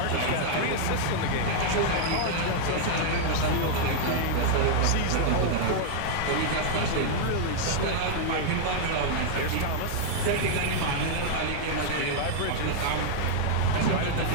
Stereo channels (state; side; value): different; both; correlation -0.01